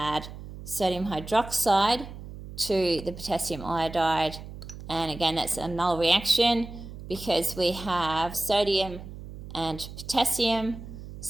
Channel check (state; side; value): noise; right; hum, 13 dB below the sound